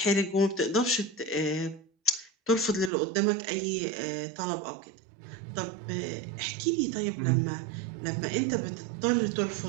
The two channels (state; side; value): drops out; left; at 2.9 s